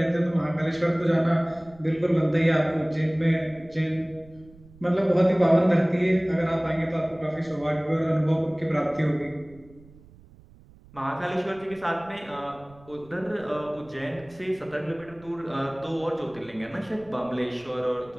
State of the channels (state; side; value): noise; right; rumble, 24 dB below the sound